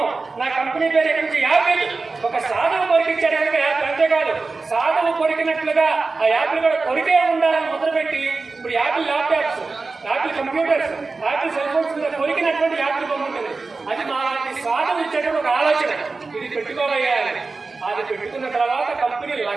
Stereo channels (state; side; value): quieter; left; 3.9 dB